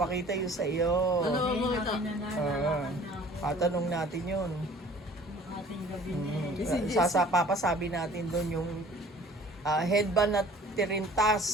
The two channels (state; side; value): normal; both; correlation 0.50